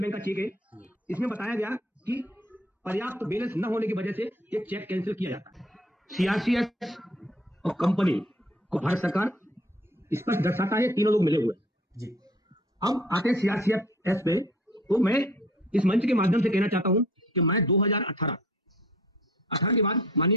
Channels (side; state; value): both; normal; correlation 0.54